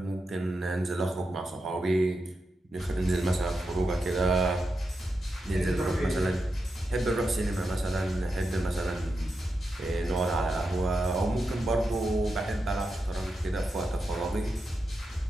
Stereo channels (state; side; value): normal; both; correlation 0.88